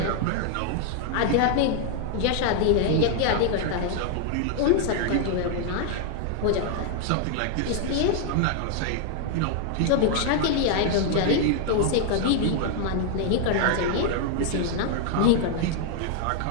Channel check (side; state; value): both; different; correlation 0.00